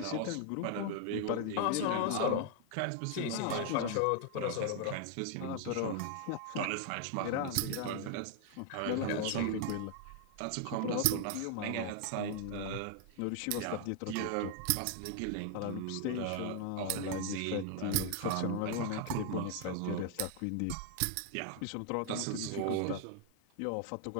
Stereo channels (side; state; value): both; different; correlation 0.00